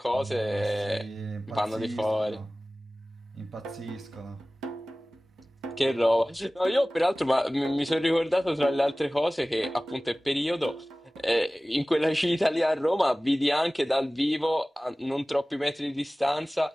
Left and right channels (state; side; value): normal; both; correlation 0.98